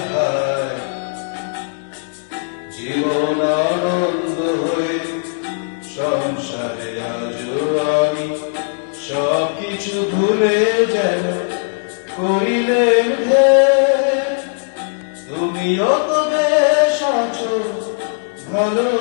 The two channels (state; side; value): silent; right; digital silence